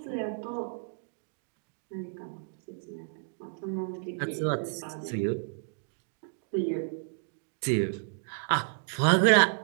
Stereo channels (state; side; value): silent; left; digital silence